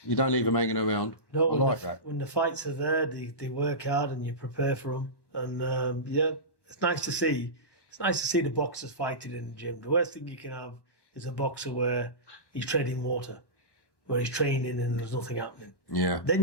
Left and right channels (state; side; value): late; right; 1.1 ms